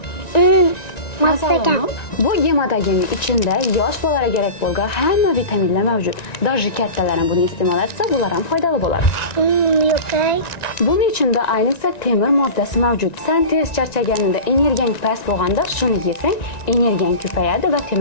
Masagan. Bu gematogenning ichida yosh bolalarga kerak bo'lgan hamma vitaminlar mavjud. Даже kattalar ham buni iste'mol etsa, bular ham foydali bo'ladi. Yo'q. Buning ichida ayniqsa temir moddasi mavjud. Sen tez charchaganingda, energiyang past bo'lganda shuni yesang, energiyang ko'payadi va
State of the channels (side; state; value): right; late; 1.9 ms